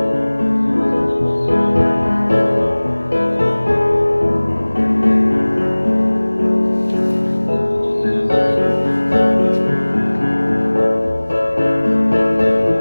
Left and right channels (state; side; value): inverted; both; correlation -1.00